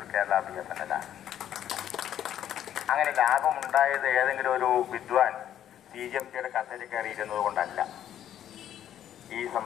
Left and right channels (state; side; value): quieter; right; 10.8 dB